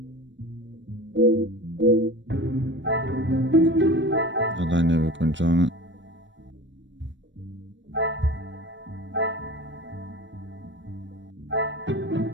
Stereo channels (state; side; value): late; left; 0.54 ms